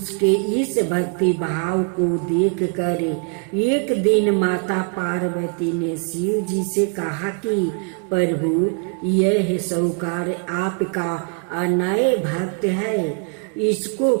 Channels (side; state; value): left; quieter; 39.1 dB